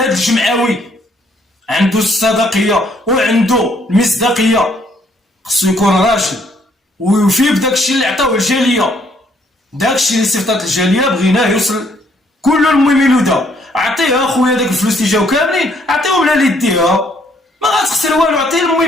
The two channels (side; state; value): both; normal; correlation 0.67